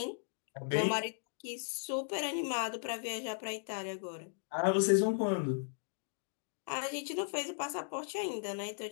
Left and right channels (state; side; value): silent; right; digital silence